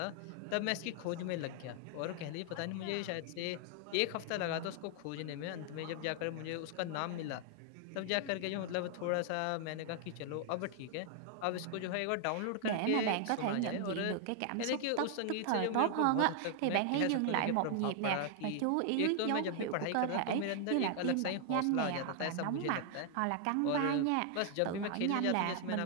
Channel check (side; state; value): both; different; correlation 0.00